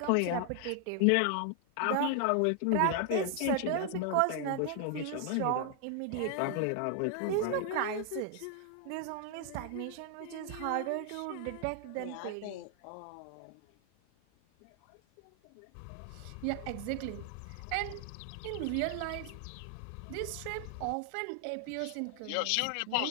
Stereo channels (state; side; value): different; both; correlation 0.00